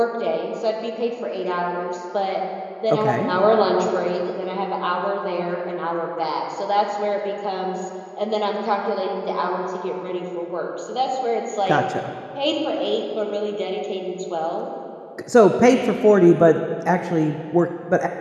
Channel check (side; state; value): both; identical; correlation 1.00